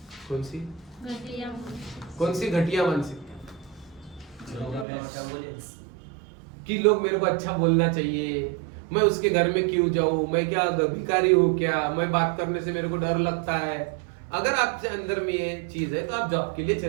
कौन सी घटिया मानसिकता? कि लोग मेरे को अच्छा बोलना चाहिए, मैं उसके घर में क्यों जाऊं, मैं क्या भिखारी हूं क्या, मैं बात करने से मेरे को डर लगता है। अगर आपके अंदर में ये चीज है तो आप जॉब के लिए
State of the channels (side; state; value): left; drops out; at 4.9 s